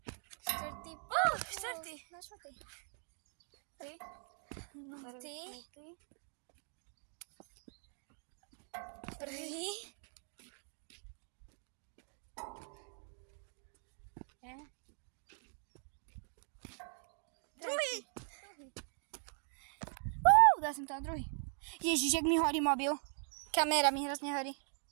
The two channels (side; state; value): left; silent; 51 dB below the other